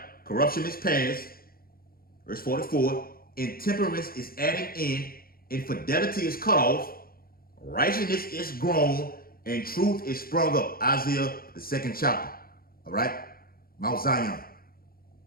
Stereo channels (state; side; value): late; right; 0.43 ms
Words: Corruption is past. Verse 44, intemperance is adding in, infidelity is cut off, righteousness is grown, and truth is sprung up. Isaiah, the 2nd chapter. All right? Mount Zion.